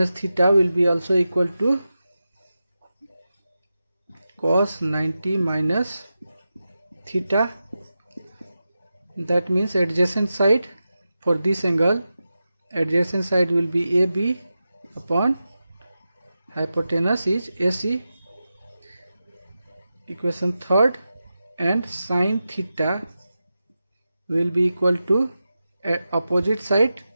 theta will be also equal to cos 90 minus theta. That means adjacent side for this angle, adjacent side will be AB upon hypotenuse is AC. Equation third, and sine theta will be equal to opposite side,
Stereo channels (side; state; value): both; inverted; correlation -0.92